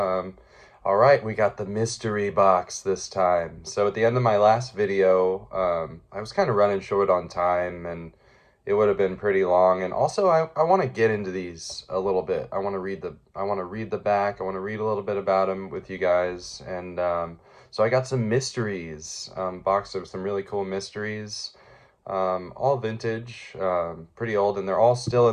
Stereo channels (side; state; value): both; identical; correlation 1.00